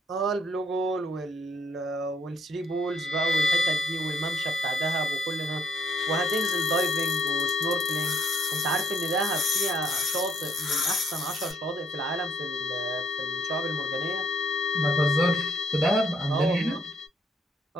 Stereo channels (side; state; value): both; normal; correlation 0.68